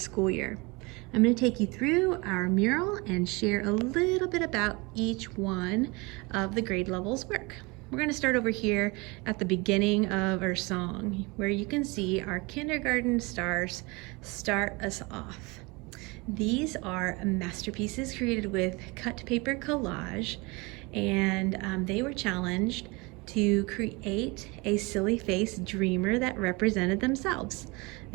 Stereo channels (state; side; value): quieter; left; 26.3 dB